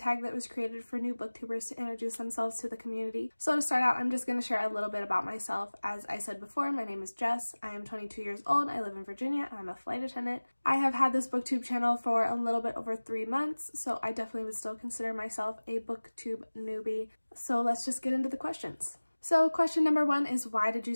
that was created for new booktubers to introduce themselves to the community. So to start out, I'm just going to share a little bit about myself. As I said before, my name is Jess. I am 22 years old. I live in Virginia. I'm a flight attendant. I have had this BOOKTUBE channel for a little bit over 3 months, so I definitely would still consider myself a BOOKTUBE newbie. So let's just get into the questions. So question number 1 is, why did you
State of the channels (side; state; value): both; inverted; correlation -1.00